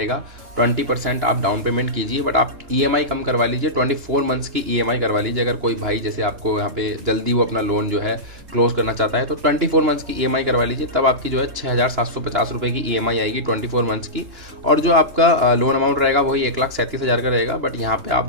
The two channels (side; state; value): left; late; 2.9 ms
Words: 20% आप डाउन पेमेंट कीजिए बट आप EMI कम करवा लीजिए, 24 मंथ्स की EMI करवा लीजिए। अगर कोई भाई जैसे आपको यहाँ पे जल्दी वो अपना लोन जो है क्लोज करना चाहता है तो 24 मंथ्स की EMI करवा लीजिए, तब आपकी जो है 6,750 रुपये की EMI आएगी 24 मंथ्स की। और जो आपका लोन अमाउंट रहेगा वही 1,37,000 का रहेगा। बट यहाँ पे